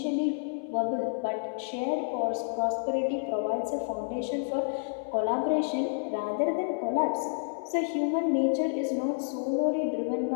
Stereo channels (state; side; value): silent; right; 58 dB below the other